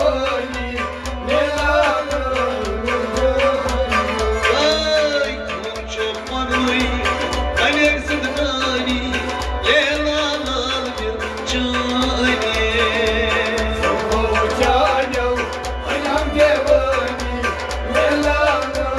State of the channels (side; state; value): both; identical; correlation 1.00